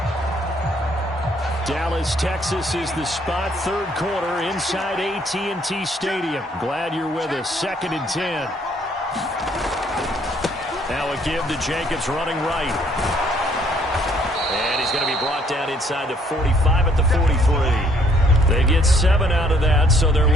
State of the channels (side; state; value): both; normal; correlation 0.65